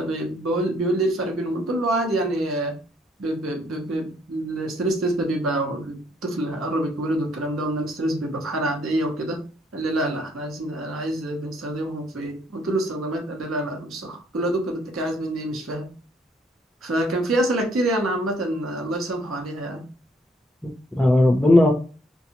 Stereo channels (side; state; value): both; normal; correlation 0.68